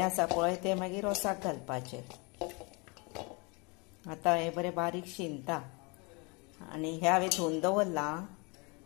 आसा पळय ते मागीर रोसाक घालपाचे। आतां हे बरें बारीक शिनता आनी हे हांवें धुवन दवरला।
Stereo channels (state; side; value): quieter; right; 29.7 dB